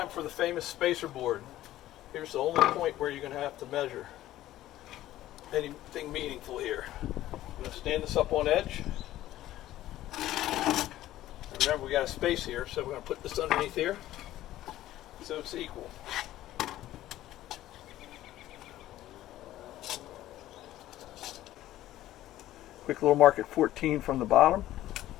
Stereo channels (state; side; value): quieter; right; 14.3 dB